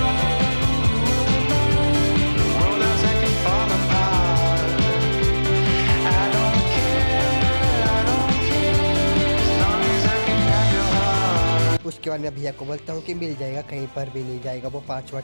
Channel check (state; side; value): inverted; both; correlation -1.00